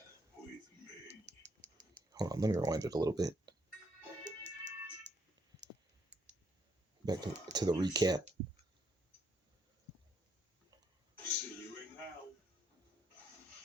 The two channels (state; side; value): normal; both; correlation 0.72